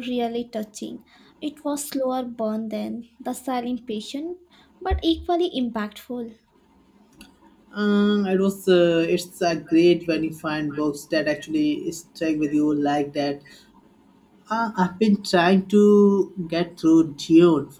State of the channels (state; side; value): identical; both; correlation 1.00